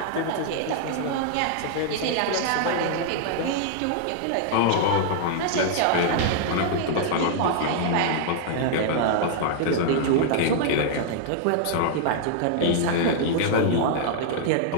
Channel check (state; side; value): different; both; correlation -0.01